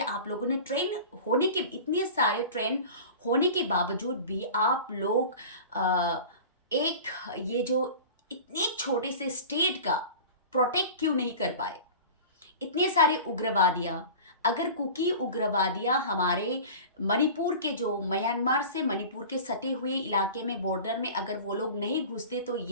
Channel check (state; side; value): inverted; both; correlation -0.37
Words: आप लोगों ने इतने सारे ट्रेन होने के बावजूद भी आप लोग एक ये जो इतने छोटे से स्टेट का प्रोटेक्ट क्यों नहीं कर पाए? इतने सारे उग्रवादियाँ, अगर कुकी उग्रवादियाँ हमारे मणिपुर के जो म्यांमार से मणिपुर के सटे हुए इलाके में, बॉर्डर में अगर वो लोग नहीं घुसते तो